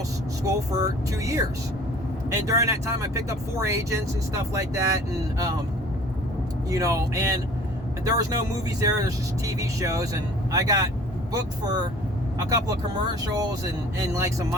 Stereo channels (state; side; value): normal; both; correlation 0.49